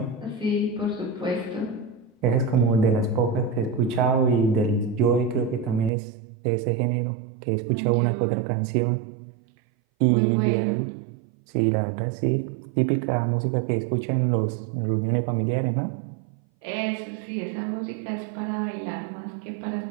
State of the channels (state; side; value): drops out; left; at 5.9 s